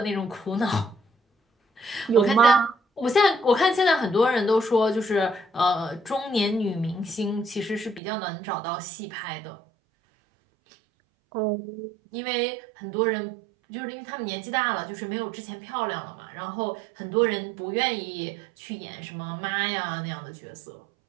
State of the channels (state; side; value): drops out; left; at 8.0 s